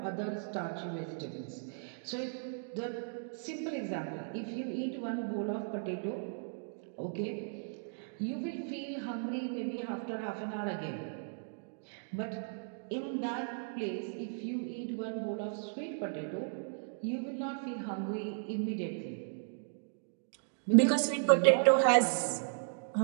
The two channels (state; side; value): silent; left; digital silence